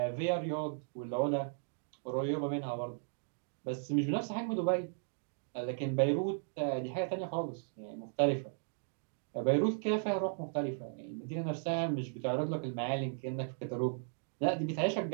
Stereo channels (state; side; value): silent; left; digital silence